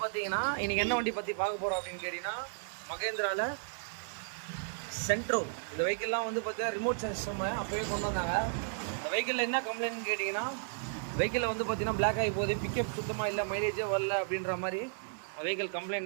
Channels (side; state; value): left; silent; 55 dB below the other